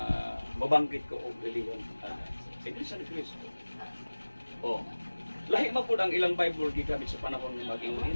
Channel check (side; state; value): both; inverted; correlation -1.00